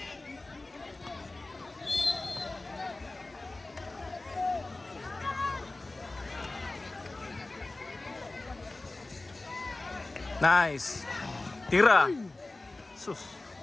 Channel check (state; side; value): quieter; right; 3.0 dB